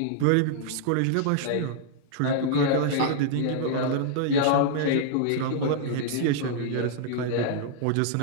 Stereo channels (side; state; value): both; different; correlation -0.01